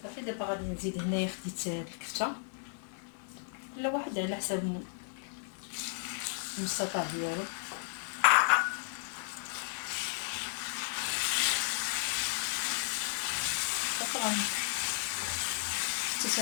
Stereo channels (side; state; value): right; silent; 55 dB below the other